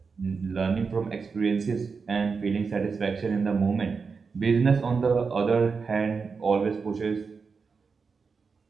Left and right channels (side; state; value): left; quieter; 5.1 dB